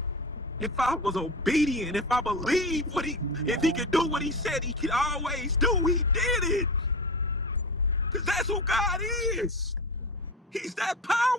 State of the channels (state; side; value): normal; both; correlation 0.26